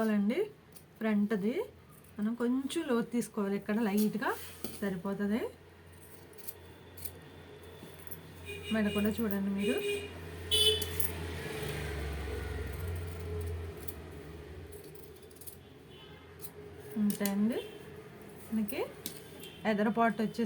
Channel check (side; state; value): both; identical; correlation 1.00